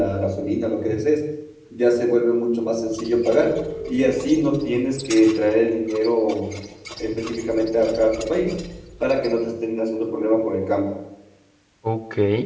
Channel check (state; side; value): identical; both; correlation 1.00